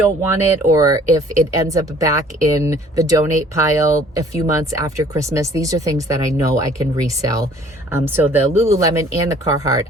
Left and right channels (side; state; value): both; normal; correlation 0.55